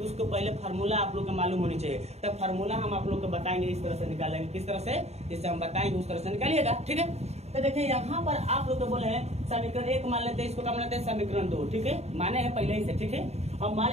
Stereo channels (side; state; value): left; late; 0.31 ms